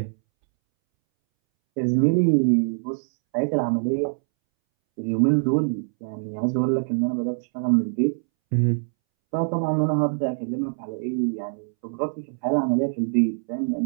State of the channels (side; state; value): left; silent; 63 dB below the other